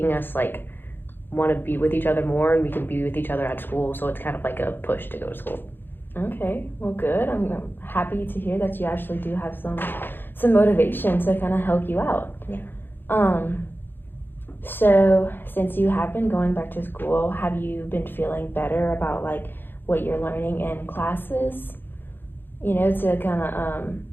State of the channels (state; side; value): late; right; 0.098 ms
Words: us like want to be with each other more, and we can be with each other at school, so it's kind of like a push to go to school. Okay, well, good. I'm happy to hear that you actually do have some motivation to kind of help you out. Yeah. So since you have been going back to school, have you been feeling better about like what you're learning in classes, to kind of